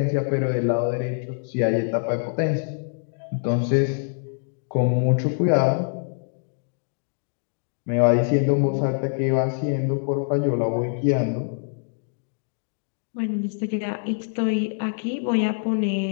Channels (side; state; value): right; silent; digital silence